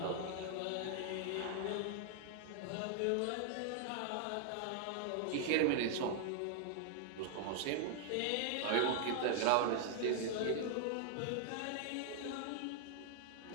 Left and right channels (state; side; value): different; both; correlation 0.00